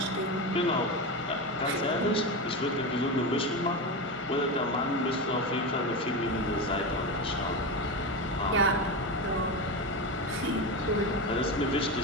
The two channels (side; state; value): both; normal; correlation 0.18